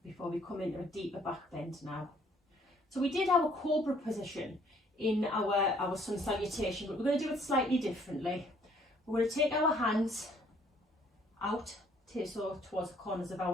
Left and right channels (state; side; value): normal; both; correlation 0.62